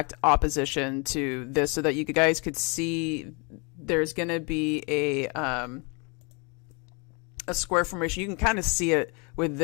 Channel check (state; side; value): quieter; right; 32.4 dB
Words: opposition to this so that you guys could see there's going to be a square formation. You can kind of see it with